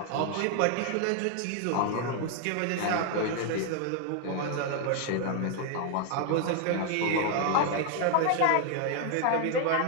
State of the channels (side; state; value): both; different; correlation 0.00